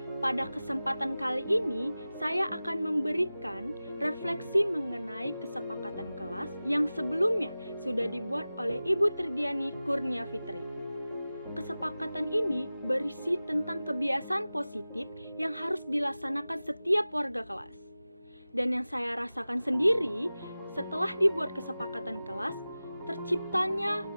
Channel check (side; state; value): both; inverted; correlation -0.97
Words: Pada kesempatan kali ini, saya akan memberikan refleksi mengenai kesepakatan kelas yang sebelumnya sudah dibuat oleh Ibu Tridiani Kurnia Fitri. Kesepakatan ini berisi tentang kebiasaan positif yang harus dilaksanakan setiap warga kelas. Dan yang saya rasakan sendiri, setelah dibuat kesepakatan kelas, terciptanya